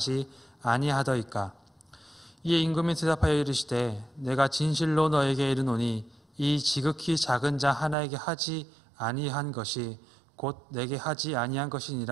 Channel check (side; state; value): left; drops out; at 8.0 s